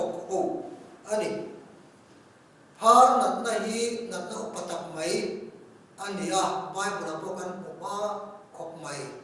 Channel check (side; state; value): both; identical; correlation 1.00